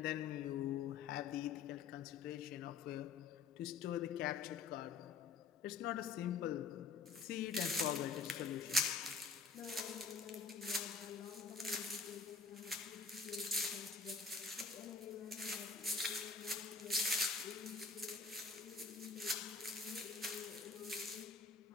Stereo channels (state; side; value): quieter; right; 4.7 dB